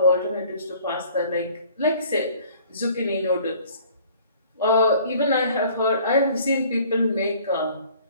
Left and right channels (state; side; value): inverted; both; correlation -0.53